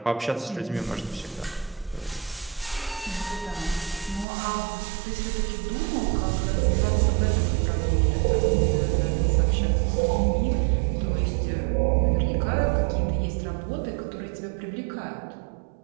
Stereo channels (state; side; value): drops out; left; at 4.2 s